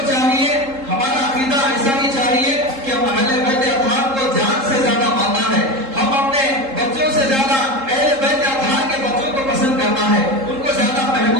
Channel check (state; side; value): late; left; 3.7 ms